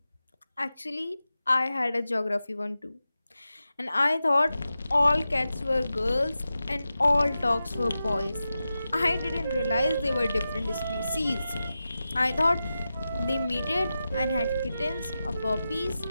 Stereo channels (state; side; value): inverted; both; correlation -0.92